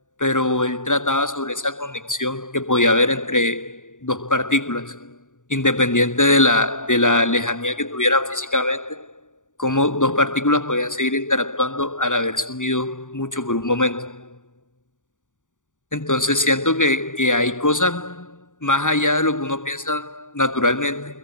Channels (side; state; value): right; late; 0.87 ms